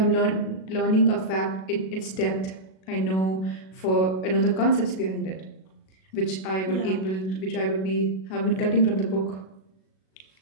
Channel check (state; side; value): late; right; 37 ms